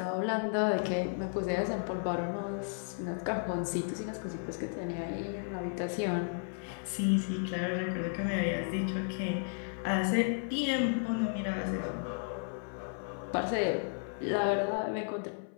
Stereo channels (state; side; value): silent; right; 55 dB below the other